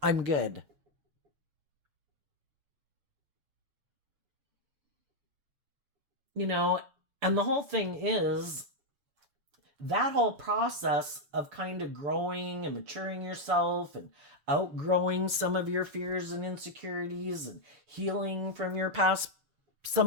I'm good. And the whole thing is, that whole process of kind of growing and maturing yourself and outgrowing some of your fears and insecurities and healing from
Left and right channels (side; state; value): left; late; 6.7 ms